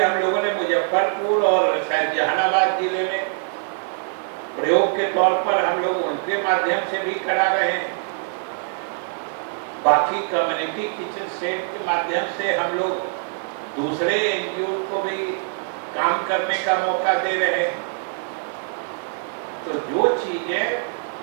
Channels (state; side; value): silent; left; 63 dB below the other